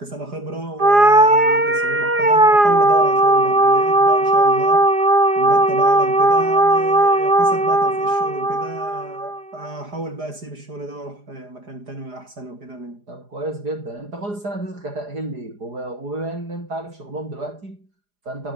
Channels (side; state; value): left; late; 4.9 ms